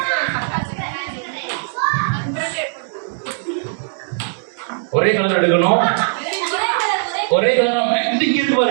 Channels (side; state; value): left; silent; digital silence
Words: ஒரே கலர் எடுக்கணும், ஒரே கலரா இங்க இருக்கு